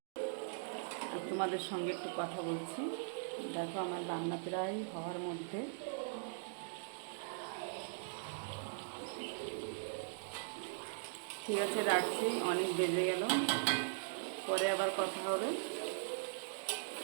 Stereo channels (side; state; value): left; silent; digital silence